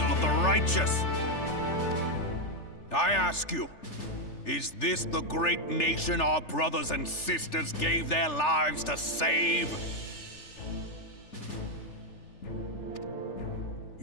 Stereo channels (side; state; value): right; late; 3.4 ms